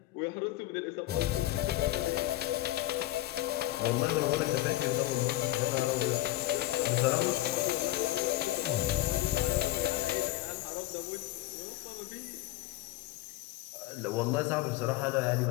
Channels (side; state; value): right; quieter; 16.2 dB